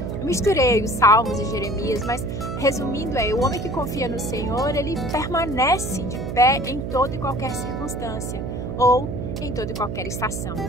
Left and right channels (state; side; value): noise; right; hum, 5 dB below the sound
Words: Eu misturei os Salmos e Jeremias, mas resumindo o homem que confia no Senhor, ele permanece de pé em toda e qualquer circunstância, ou em toda e qualquer estação.